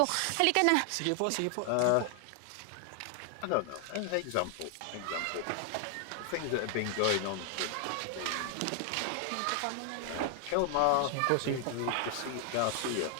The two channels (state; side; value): different; both; correlation 0.00